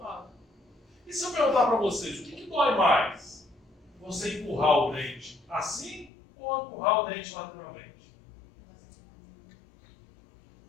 E se eu perguntar para vocês, o que dói mais? Você empurrar o dente assim ou empurrar o dente lateralmente?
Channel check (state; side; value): drops out; right; at 6.1 s